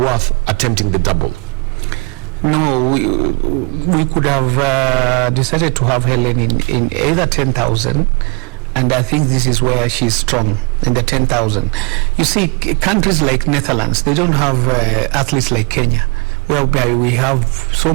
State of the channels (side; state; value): left; quieter; 30.4 dB